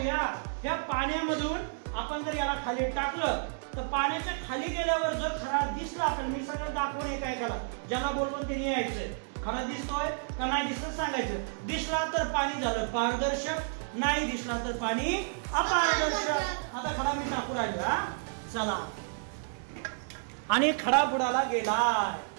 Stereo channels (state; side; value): silent; left; digital silence